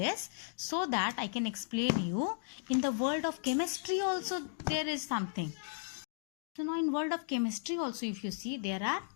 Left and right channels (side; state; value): right; silent; digital silence